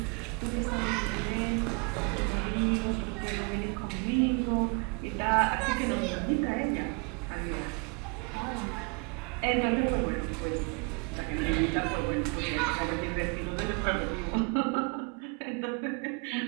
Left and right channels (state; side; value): quieter; left; 33.7 dB